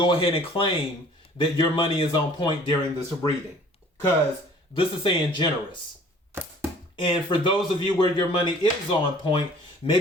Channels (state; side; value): normal; both; correlation 0.52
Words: ahead and claim that your money is on point during this reading. Because this is saying generous. And for those of you where your money is on point,